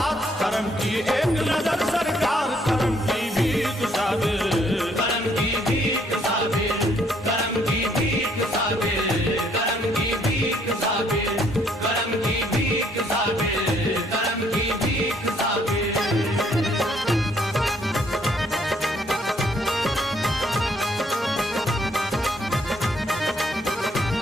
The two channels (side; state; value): both; normal; correlation 0.67